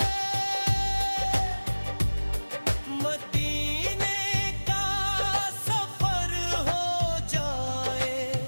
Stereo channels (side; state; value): both; inverted; correlation -1.00